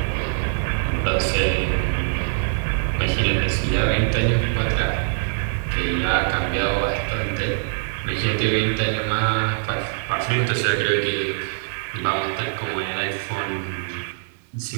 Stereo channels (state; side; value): silent; left; digital silence